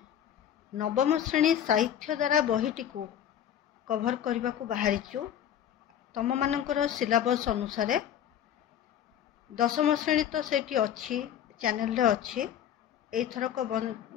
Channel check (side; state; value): right; quieter; 10.0 dB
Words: नवम श्रेणी साहित्य द्वारा बहीटी को कभर करने को बाहरीचु। तम मानकर सिलेबस अनुसार दशम श्रेणी तो सेठी अच्छी चैनल रे अच्छी। एइथरक